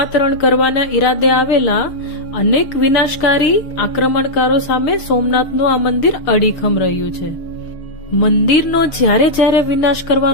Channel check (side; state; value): right; late; 6.5 ms